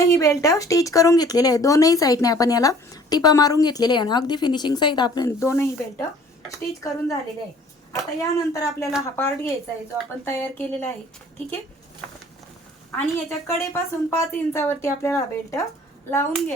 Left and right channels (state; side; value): normal; both; correlation 0.53